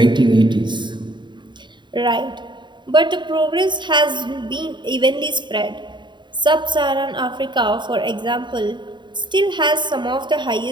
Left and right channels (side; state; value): left; late; 0.22 ms